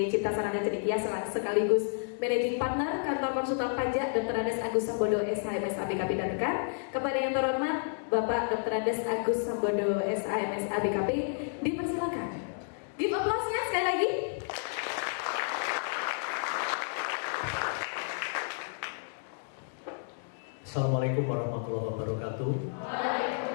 Cipta Sarana Cendekia sekaligus Managing Partner Kantor Konsultan Pajak Dr. Andes Agus Sambodo SHMS ABKP dan rekan. Kepada yang terhormat Bapak Dr. Andes Agus Sambodo SHMS ABKP, dipersilakan. Give applause-nya sekali lagi. Assalamualaikum warahmatullahi wabarakatuh.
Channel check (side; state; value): right; silent; digital silence